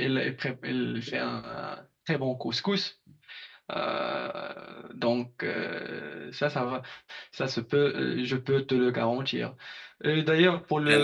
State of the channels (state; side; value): identical; both; correlation 1.00